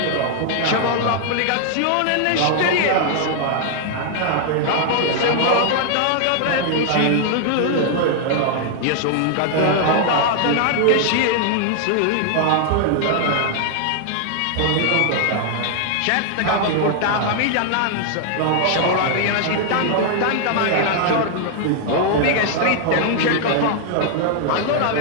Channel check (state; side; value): different; both; correlation 0.00